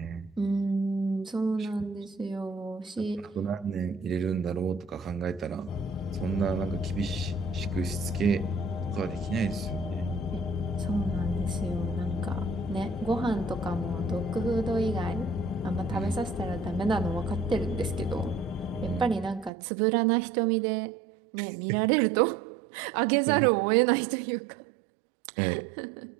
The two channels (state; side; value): drops out; left; at 19.5 s